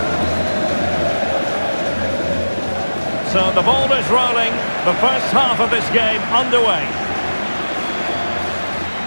So the ball is rolling. The first half of this game underway.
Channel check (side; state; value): both; inverted; correlation -1.00